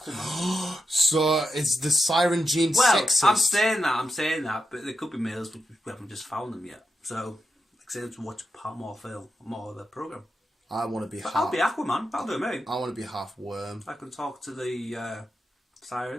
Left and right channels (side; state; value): both; normal; correlation 0.86